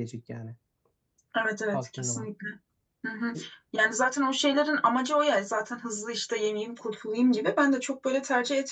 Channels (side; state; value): both; identical; correlation 1.00